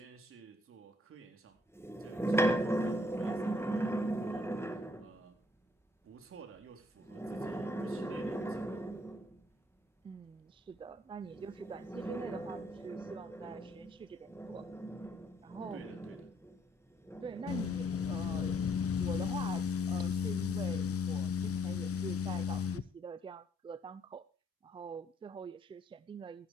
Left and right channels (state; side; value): normal; both; correlation 0.67